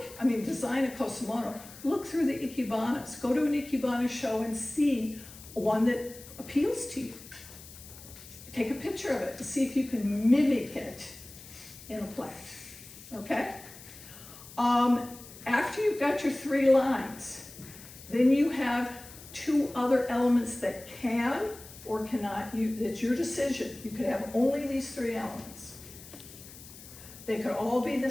design a Kusamono, look through the ikebanas. Go to an ikebana show and see one that appeals to you. Take a picture of it and see if you can mimic it in a plant. Okay? After you've got your 3 lines, then you have 2 other elements that can or cannot, it's your decision. You could have only these 3 elements. They could all be the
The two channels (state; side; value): noise; left; hiss, 17 dB below the sound